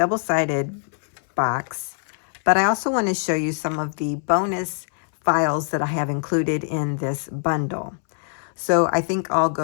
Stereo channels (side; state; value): right; silent; 63 dB below the other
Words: box, but I also want to show you some of the bonus files that I have included in this bundle. So I think I'll